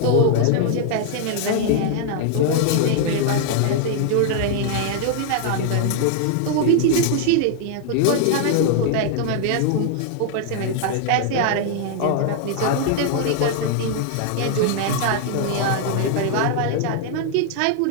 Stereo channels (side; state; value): both; different; correlation -0.01